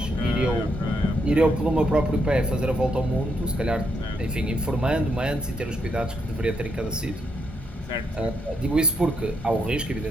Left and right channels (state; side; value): normal; both; correlation 0.78